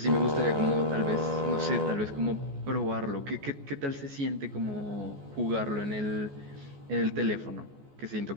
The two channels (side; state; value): left; late; 14 ms